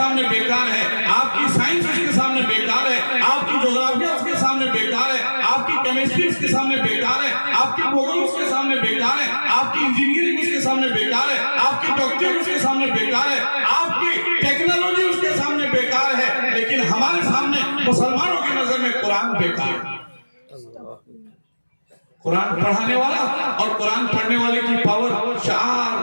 बेकार है, आपकी साइंस उसके सामने बेकार है, आपकी ज्योग्राफिया उसके सामने बेकार है, आपकी केमिस्ट्री उसके सामने बेकार है, आपकी भूगोल उसके सामने बेकार है, आपकी इंजीनियरिंग उसके सामने बेकार है, आपकी डॉक्टरी उसके सामने बेकार है, आपकी टेक्नोलॉजी उसके सामने बेकार है। लेकिन हमारे सामने मुसलमानों की नजर में कुरान बेकार है। कुरान पढ़ाने वाला और कुरान पढ़ने वाले की पावर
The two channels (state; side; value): inverted; both; correlation -1.00